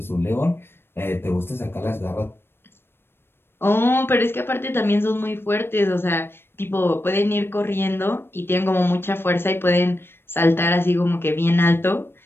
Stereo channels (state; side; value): late; right; 0.11 ms